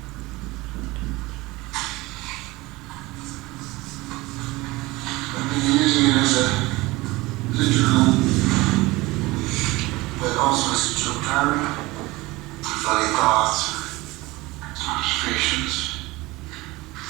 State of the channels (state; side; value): quieter; left; 21.1 dB